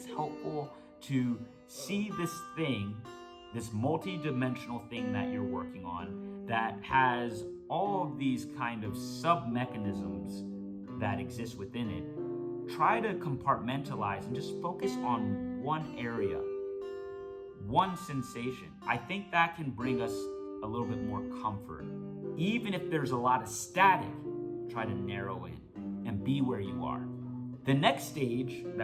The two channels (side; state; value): both; identical; correlation 1.00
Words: helpful to see this thing, this multi-dimensional thing that you're working on that has all of these kind of sub-mechanisms that exist within it. Try to compartmentalize and just focus on one area, one sensation. I think that can bring us a little bit more comfort. Even if there's a lot of static, try to narrow in and be where you are. The next stage